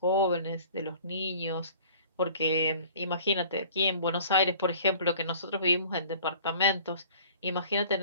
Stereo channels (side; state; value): both; inverted; correlation -0.49